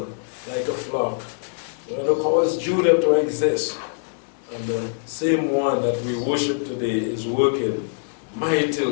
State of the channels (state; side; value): silent; right; digital silence